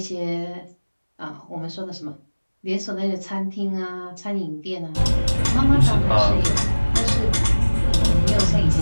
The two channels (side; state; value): both; inverted; correlation -1.00